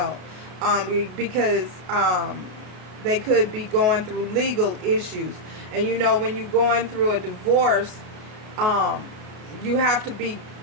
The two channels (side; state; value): left; late; 33 ms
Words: because they could be going through legal issues. And you know, when you're going through a divorce, you have to be